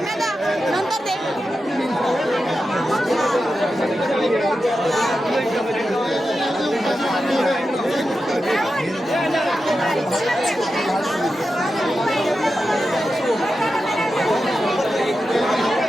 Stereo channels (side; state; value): both; normal; correlation 0.90